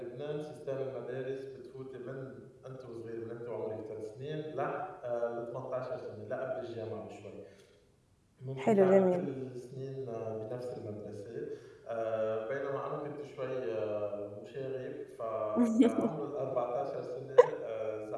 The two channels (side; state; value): both; identical; correlation 1.00